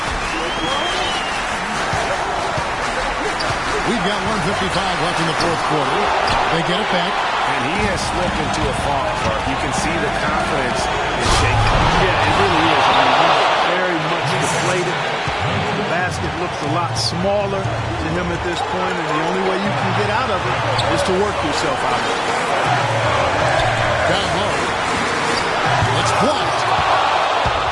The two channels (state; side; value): identical; both; correlation 1.00